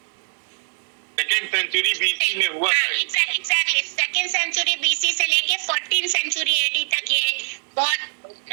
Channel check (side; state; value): left; silent; digital silence